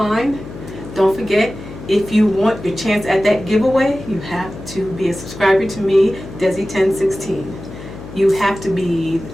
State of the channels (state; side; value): noise; left; hum, 13 dB below the sound